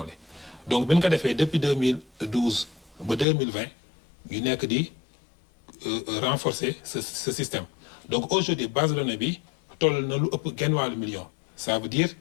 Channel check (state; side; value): drops out; right; at 3.2 s